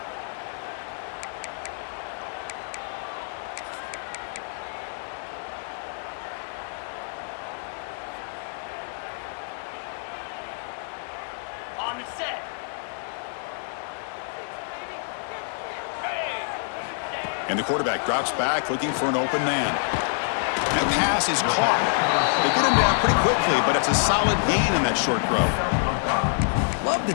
On the set. And the quarterback drops back looking for an open man. That pass is caught. They get him down pretty quickly, but it's a solid gain in that short throw. Love the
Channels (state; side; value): silent; right; digital silence